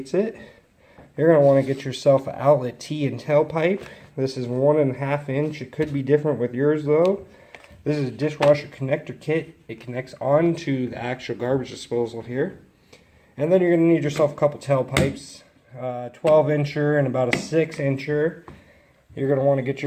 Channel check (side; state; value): both; identical; correlation 1.00